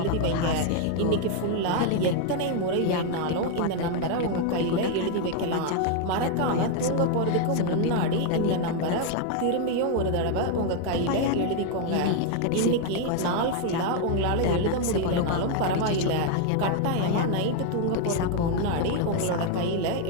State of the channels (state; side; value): different; both; correlation 0.01